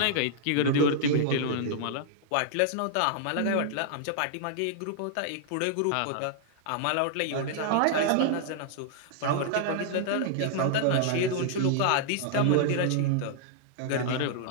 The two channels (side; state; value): both; different; correlation -0.01